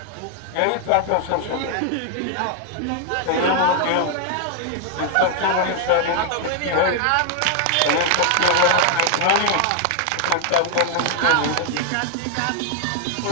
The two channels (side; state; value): both; different; correlation 0.00